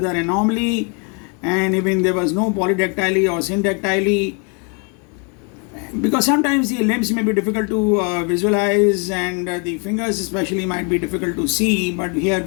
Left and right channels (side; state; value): right; quieter; 35.0 dB